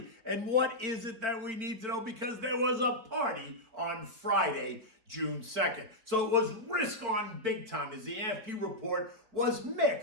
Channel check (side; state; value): left; late; 4.5 ms